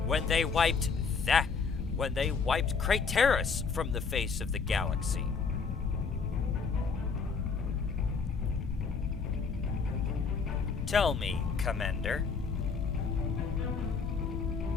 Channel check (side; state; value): right; quieter; 5.3 dB